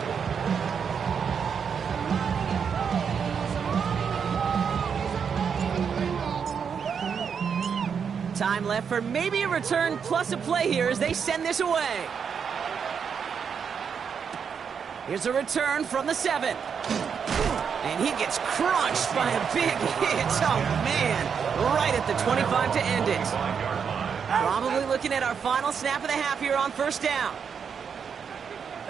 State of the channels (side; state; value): left; quieter; 6.8 dB